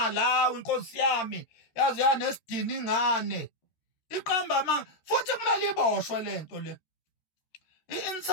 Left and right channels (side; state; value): right; late; 13 ms